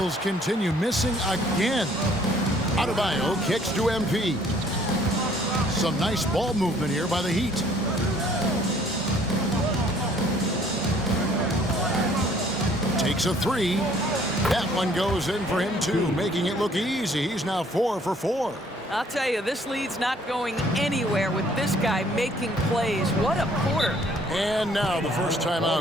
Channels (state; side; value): normal; both; correlation 0.60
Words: continue, missing again. Adebayo kicks to MP. Some nice ball movement here by the Heat. Takes a three. That one goes in for him too, making it look easy. He's now 4 for 4. I'll tell you, this lead's not going anywhere with this guy making plays. What a quarter. And now the first